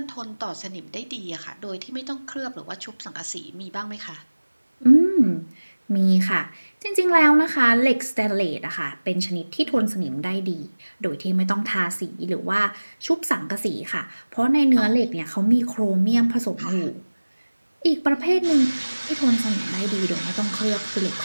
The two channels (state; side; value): inverted; both; correlation -1.00